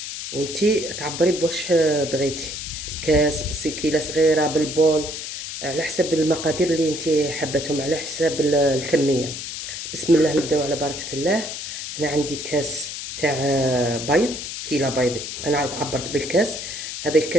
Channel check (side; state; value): left; noise; hiss, 7 dB below the sound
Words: وانتي تعبري بواش بغيتي، بكاس، بسكينه صغيره، بالبول، على حسب المقادير اللي انتي حبتهم، على حساب الكميه. بسم الله، نبداو على بركه الله. هنا عندي كاس تاع بيض، كيلة بيض. انا عبرت بالكاس. هذا